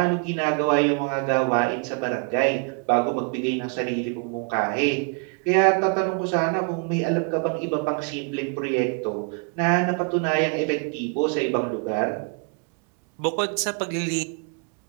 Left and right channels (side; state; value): left; quieter; 37.1 dB